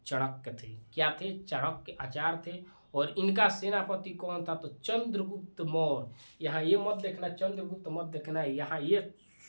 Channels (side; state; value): both; inverted; correlation -1.00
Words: चाणक्य थे। क्या थे? चाणक्य आचार्य थे। और इनका सेनापति कौन था? तो चंद्रगुप्त मौर्य। यहाँ ये मत देखना, चंद्रगुप्त मत देखना, यहाँ ये